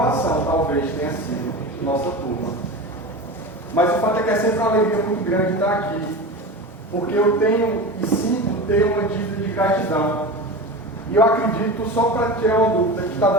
talvez, tenha sido nossa turma. Mas o fato é que é sempre uma alegria muito grande estar aqui, porque eu tenho e sinto ter uma dívida de gratidão. E eu acredito, só para tirar uma dúvida, que está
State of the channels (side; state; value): both; normal; correlation 0.28